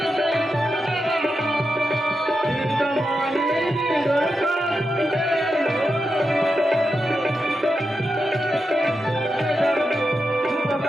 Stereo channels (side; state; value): both; normal; correlation 0.87